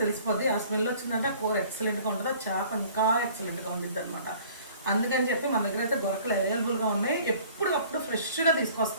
తెలిసిపోద్ది. ఆ స్మెల్ వచ్చిందంటే ఆ కూర ఎక్సలెంట్గా ఉంటుంది, ఆ చేప ఇంకా ఎక్సలెంట్గా ఉండిద్ది అనమాట. అందుకని చెప్పి మన దగ్గర అయితే గొరకలు అవైలబుల్గా ఉన్నాయి. ఎప్పటికప్పుడు ఫ్రెష్గా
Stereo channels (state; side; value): inverted; both; correlation -0.51